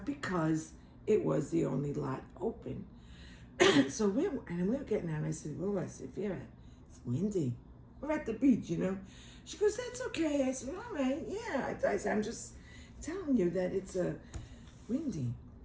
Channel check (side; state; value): both; identical; correlation 1.00